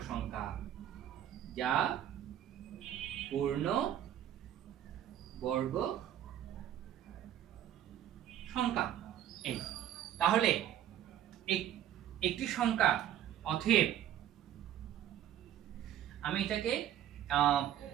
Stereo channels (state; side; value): quieter; left; 11.1 dB